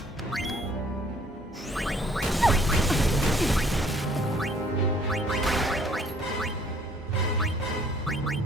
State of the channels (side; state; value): both; normal; correlation 0.60